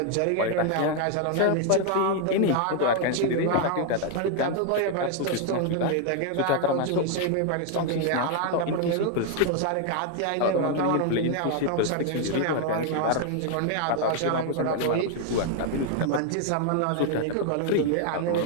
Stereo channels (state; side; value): different; both; correlation 0.00